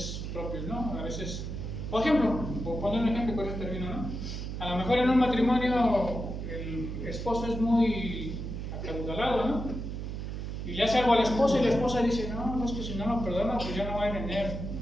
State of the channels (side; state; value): right; noise; hum, 5 dB below the sound